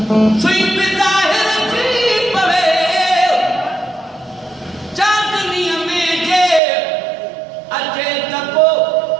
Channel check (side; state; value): left; drops out; at 6.6 s